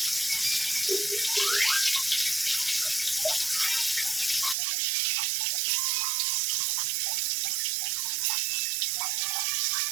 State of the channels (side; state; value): left; drops out; at 4.5 s